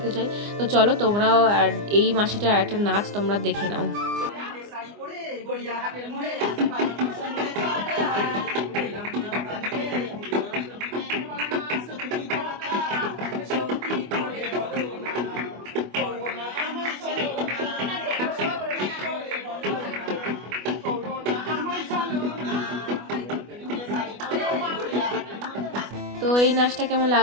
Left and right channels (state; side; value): late; left; 24 ms